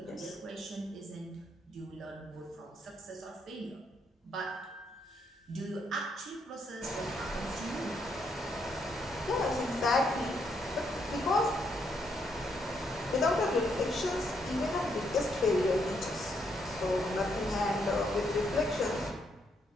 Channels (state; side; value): normal; both; correlation 0.75